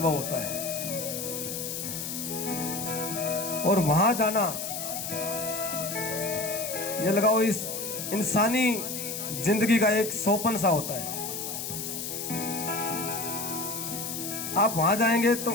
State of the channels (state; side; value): noise; left; hiss, 5 dB below the sound